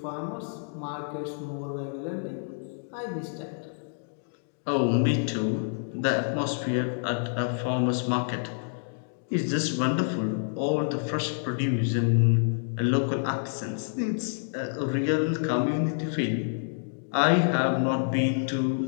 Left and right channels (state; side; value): silent; right; digital silence